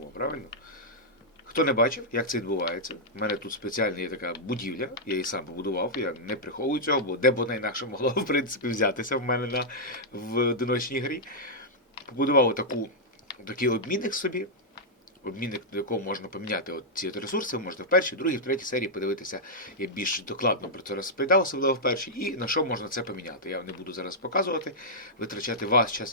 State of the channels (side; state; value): both; normal; correlation -0.08